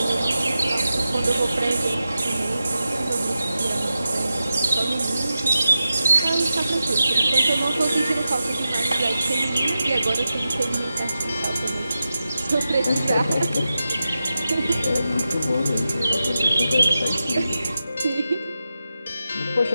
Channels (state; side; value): inverted; both; correlation -0.90